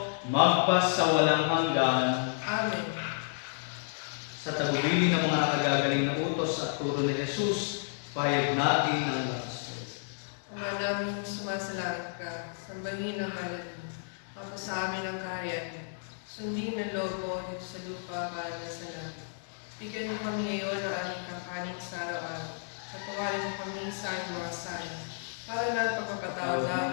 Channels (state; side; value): silent; right; digital silence